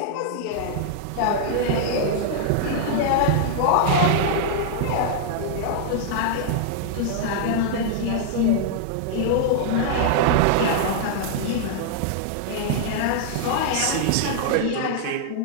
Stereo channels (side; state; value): both; different; correlation -0.01